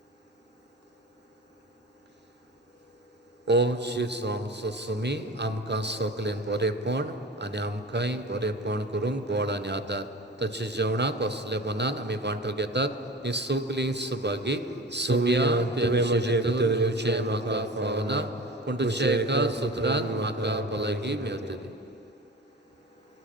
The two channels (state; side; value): normal; both; correlation 0.36